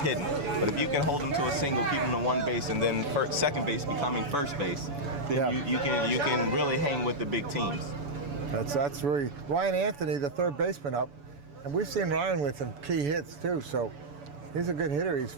But if you can hold them to a single, keep them to one base, and then second base becoming first base, then you can really hang with the big teams. That's really Ryan Anthony, the 3rd baseman up, and we've seen Ryan with some key hits too. So he's a good hitter. He's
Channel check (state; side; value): late; left; 7.0 ms